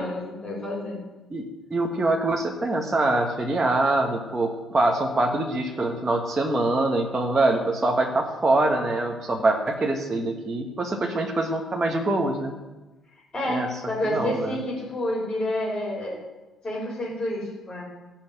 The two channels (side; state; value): both; normal; correlation 0.80